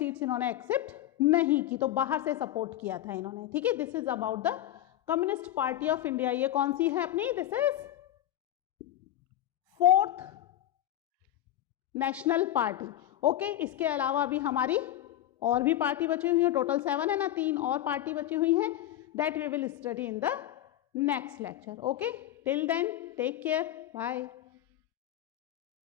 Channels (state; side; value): quieter; right; 12.8 dB